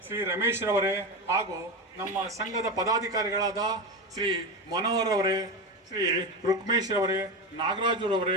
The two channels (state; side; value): normal; both; correlation 0.18